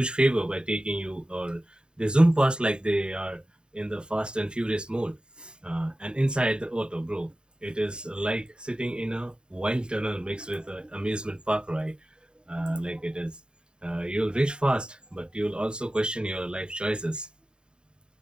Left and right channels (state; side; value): late; left; 0.049 ms